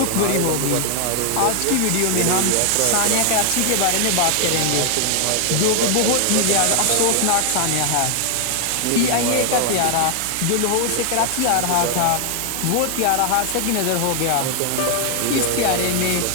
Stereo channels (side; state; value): both; different; correlation 0.00